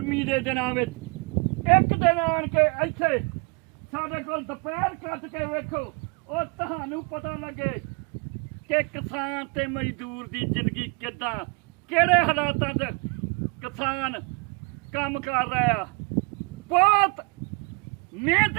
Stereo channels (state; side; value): quieter; left; 31.9 dB